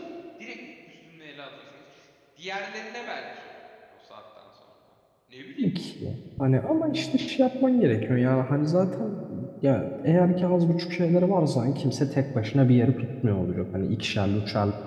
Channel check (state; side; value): identical; both; correlation 1.00